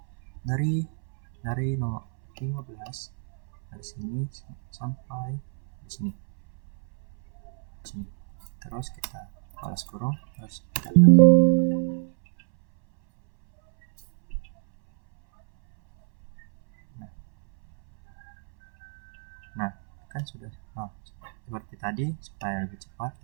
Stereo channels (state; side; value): silent; left; 60 dB below the other